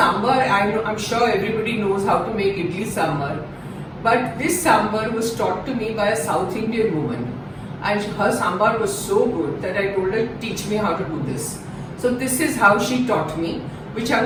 I'm sure everybody knows how to make idli sambar. But this sambar was taught to me by a South Indian woman. And her sambar was so good that I told her, teach me how to do this. So this is how she taught me, which I'm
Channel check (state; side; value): identical; both; correlation 1.00